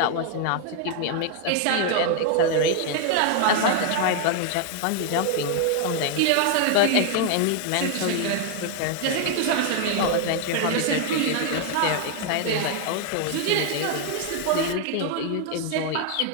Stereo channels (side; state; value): both; different; correlation 0.00